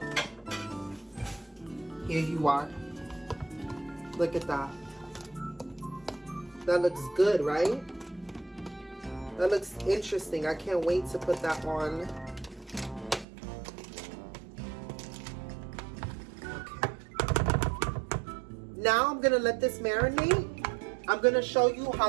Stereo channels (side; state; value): left; drops out; at 13.2 s